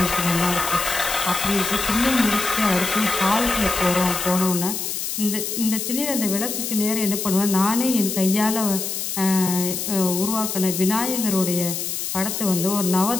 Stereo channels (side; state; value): left; noise; hiss, 3 dB below the sound